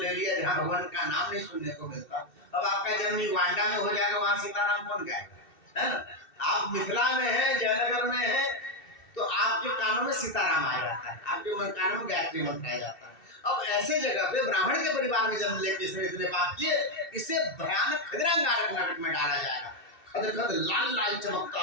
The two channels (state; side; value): late; right; 2.7 ms